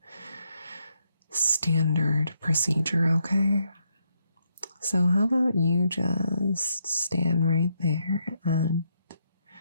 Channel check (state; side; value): inverted; both; correlation -0.77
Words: standard procedure, okay? So how about you just stand right there and